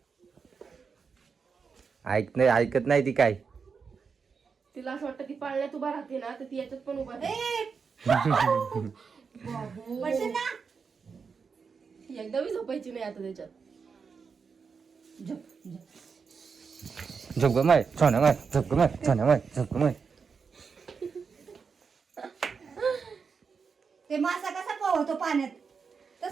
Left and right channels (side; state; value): left; quieter; 5.6 dB